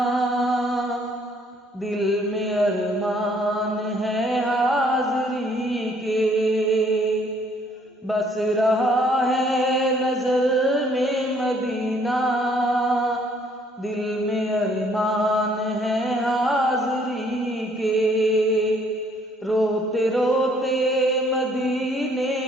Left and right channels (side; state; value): both; normal; correlation 0.63